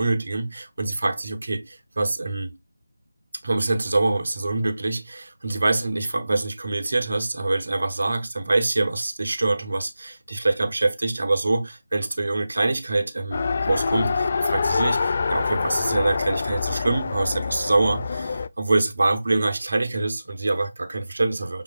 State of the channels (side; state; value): both; inverted; correlation -0.93